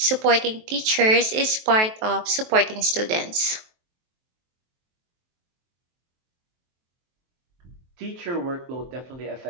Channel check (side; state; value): left; late; 23 ms